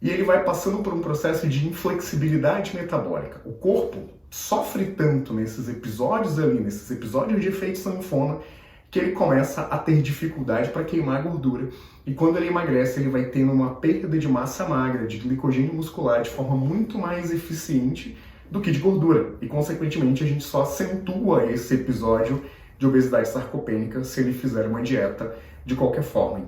e ele vai passando por um processo de inflexibilidade metabólica. O corpo sofre tanto nesses episódios de efeito sanfona, que ele começa a ter dificuldade para queimar gordura. E quando ele emagrece, ele vai tendo uma perda de massa magra, de glicogênio muscular, de forma muito mais eficiente do que de gordura. E, consequentemente, a gente só acentua esse episódio de obesidade sarcopênica se ele fizer uma dieta de qualquer forma.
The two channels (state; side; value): identical; both; correlation 1.00